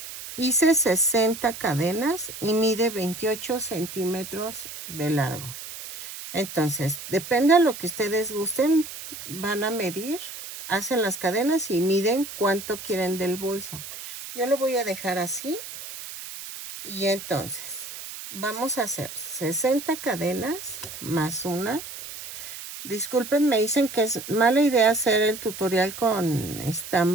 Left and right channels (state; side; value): noise; right; hiss, 11 dB below the sound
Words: hice 60 cadenas y mide 28 centímetros de largo. Entonces, depende de lo que ustedes gusten, van a medir, hacen las cadenas y miden cuánto quieren del bolso. Yo lo voy a dejar así y entonces vamos a hacer 60 cadenas más una. Disculpen, me dicen que es mala idea hacer el tutorial con